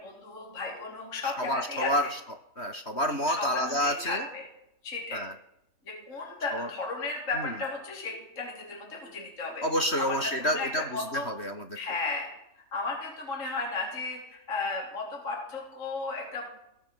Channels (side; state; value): right; late; 3.1 ms